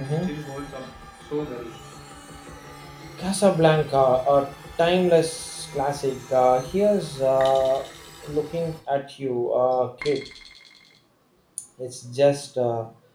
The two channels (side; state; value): both; identical; correlation 1.00